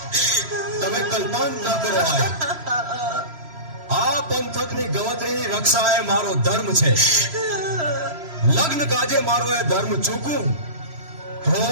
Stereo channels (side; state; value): left; late; 3.0 ms